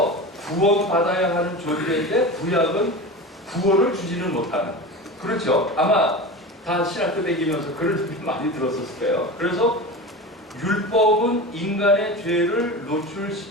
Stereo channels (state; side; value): normal; both; correlation 0.29